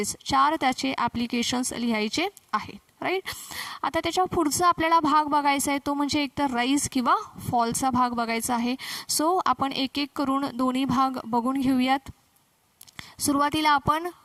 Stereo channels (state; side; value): identical; both; correlation 1.00